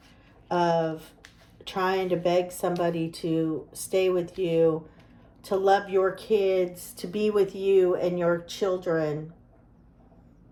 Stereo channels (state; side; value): identical; both; correlation 1.00